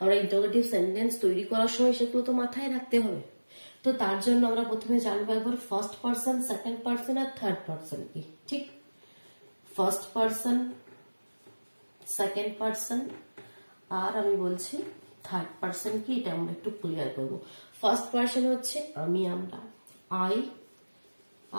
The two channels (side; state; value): both; inverted; correlation -1.00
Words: আমরা ইন্টারোগেটিভ সেন্টেন্স তৈরি করার সময় সেগুলো তো মাথায় রাখতে হবে। তো তার জন্য আমরা প্রথমে জানবো একবার ফার্স্ট পার্সন, সেকেন্ড পার্সন আর থার্ড পার্সন কি। ঠিক, ফার্স্ট পার্সন, সেকেন্ড পার্সন আর আমি বলছি থার্ড পার্সন কি, এটা আমরা একটু ক্লিয়ার করবো। ফার্স্ট পার্সন হচ্ছে আমি, আমরা, আই